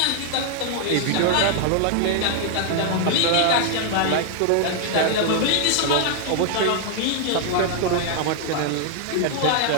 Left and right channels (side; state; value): both; different; correlation 0.00